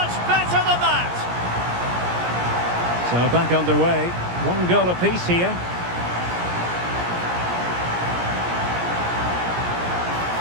better than that. So back underway. One goal apiece here.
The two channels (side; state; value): left; late; 17 ms